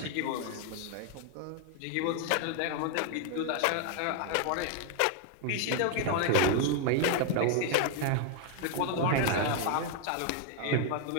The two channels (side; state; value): both; different; correlation 0.01